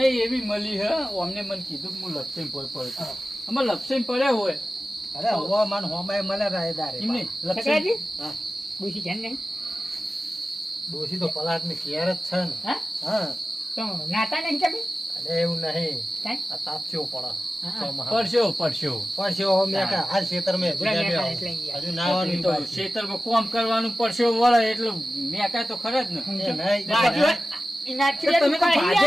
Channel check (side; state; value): both; normal; correlation 0.95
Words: એવી મળી હે અમને મને કીધું કે હું લપસીને ભોય પડે આમાં લપસીને પડ્યા હોય અરે હો મન હોમાય મળે રાયદારે એમ નહીં લપસીને શકરાજી હા. ડોશી છે ને ડોશી તો પલાટ ની કેર જ છે ને હા હા તો નાતા નહીં કે ભાઈ અલે એવું નહીં કાંઈ? આ તાપસ્યો પડે હા. ચોમાહા. પડશો પડશો પરસ્યો હો મેં કા હાલ ખેતર મેં પૂરા મેં કાંઈ એટલે યાર. હજુ નાવાનું તો બાકી. ખેતરમાં કોમ કરવાનું પડશો વળે એટલે મેં કાંઈ તો ખરા જ ને એ નહીં. બાજુ એનાથી તો તમે તો દુખાઈ